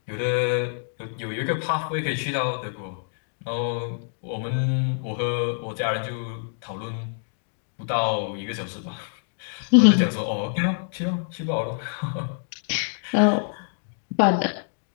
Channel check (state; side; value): silent; right; digital silence